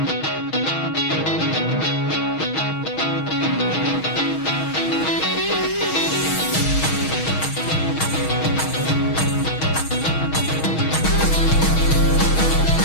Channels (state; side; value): late; right; 6.3 ms